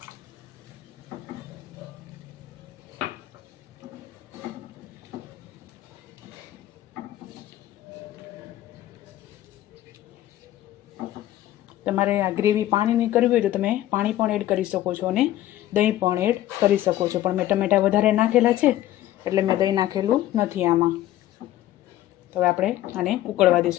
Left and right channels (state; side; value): quieter; right; 14.0 dB